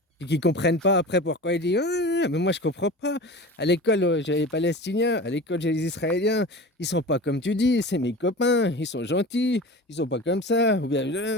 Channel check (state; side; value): normal; both; correlation 0.33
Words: et qu'ils comprennent pas après pourquoi ils disent ah, mais moi je comprends pas. À l'école j'ai les Palestiniens, à l'école j'ai les Israéliens, ils sont pas comme tu dis, c'est mes copains, ils sont gentils, ils sont pas comme ça. Ou